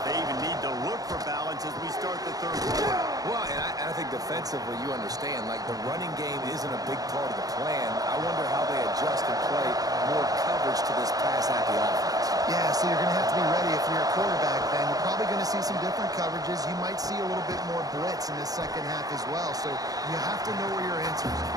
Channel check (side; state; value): left; late; 0.18 ms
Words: they even need to look for balance as we start the third quarter. Well, and I think defensively, you understand, like the running game isn't a big part of the plan. I wonder how they adjust and play more coverage to this pass-happy offense. Yeah, so you're going to have to be ready if you're a quarterback then. You're probably going to see some different coverages. You might see a little bit more blitz in the second half as well. So you have to know where your answers